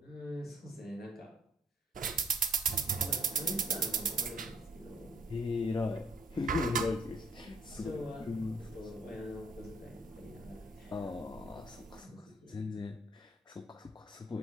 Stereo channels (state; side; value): normal; both; correlation 0.62